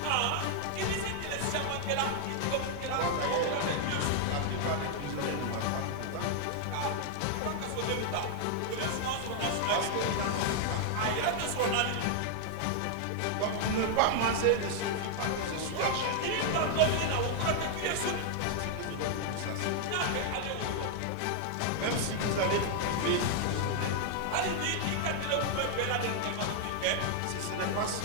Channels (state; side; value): different; both; correlation 0.00